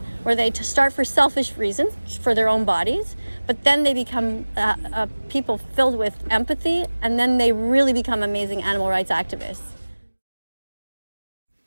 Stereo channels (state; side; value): inverted; both; correlation -1.00